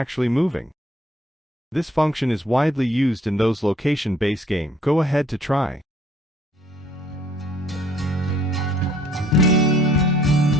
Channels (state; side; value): normal; both; correlation 0.61